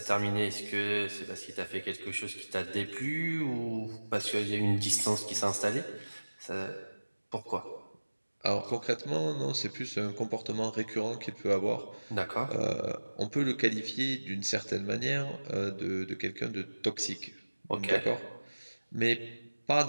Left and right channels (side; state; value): both; inverted; correlation -1.00